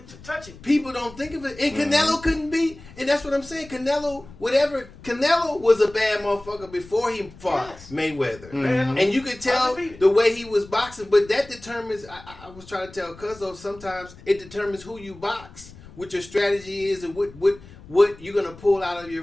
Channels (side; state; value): left; noise; rumble, 20 dB below the sound